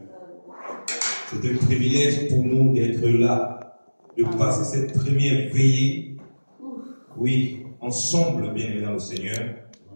C'est un privilège pour nous d'être là, de passer cette première veillée. Oui, ensemble, bien-aimés dans le Seigneur.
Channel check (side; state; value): both; inverted; correlation -1.00